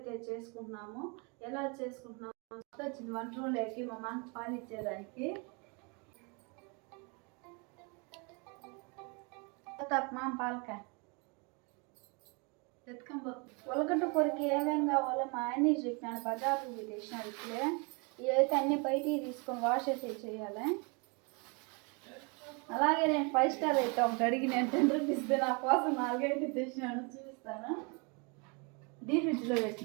చేసుకుంటున్నాము. ఎలా చేసుకుంటున్నాము వచ్చింది వంట రూమ్లోకి మా మామ పాలు ఇచ్చేదానికి. మామ పాలకాయ ఉలగడ్డ కూరకి ఏమేమి కావాలో మా ఆయన చెప్పినాడు. బజార్కి తెచ్చినాడు. ఇప్పుడే ఇవైతే అన్ని బయటికి తీసుకొని వాష్ అయితే చేయాలి. అలాగే నేను 5 స్టార్ అయితే ఒకటి అడిగి నేను 10 రూపీస్ నా కోసం 4 అయితే తెచ్చినాను, చూపిస్తాను. డీప్ ఫ్రిడ్జ్లో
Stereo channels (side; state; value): left; quieter; 32.5 dB